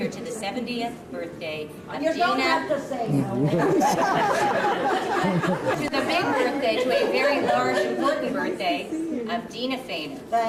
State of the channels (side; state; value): both; identical; correlation 1.00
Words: to the 70th birthday of Deena. Don't have to say no. To the big birthday, to a very large, important birthday of Deena Fainer.